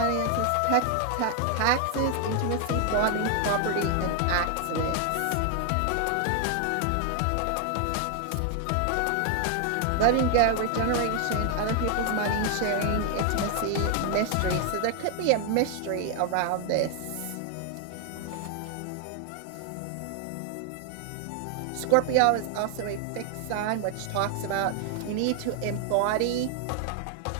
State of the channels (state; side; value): different; both; correlation 0.00